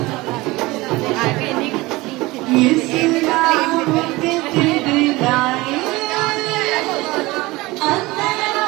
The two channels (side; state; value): left; quieter; 21.1 dB